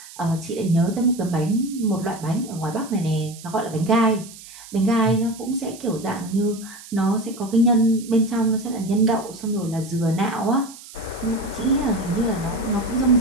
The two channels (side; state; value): right; noise; hiss, 17 dB below the sound